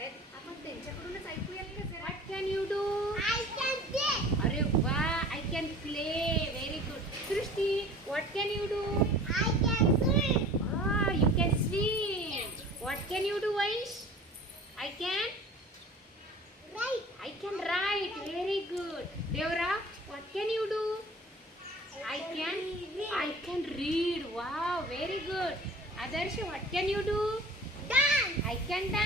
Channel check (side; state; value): both; normal; correlation 0.44